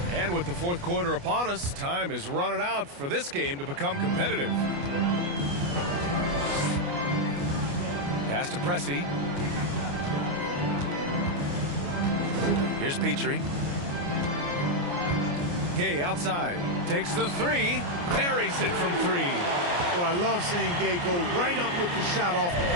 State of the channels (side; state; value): left; late; 29 ms